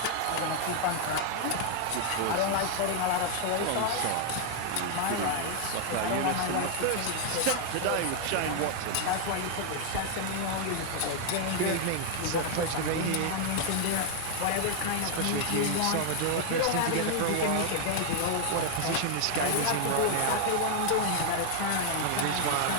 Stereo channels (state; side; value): different; both; correlation 0.00